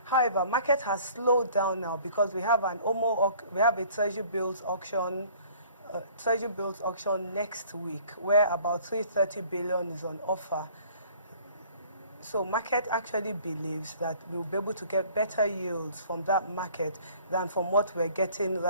However, market has slowed down now because we have a treasury bills auction next week where about 330 billion is on offer. So market actually believes that we'll be able to get better yields from that market than from what we're getting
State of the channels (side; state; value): both; inverted; correlation -0.53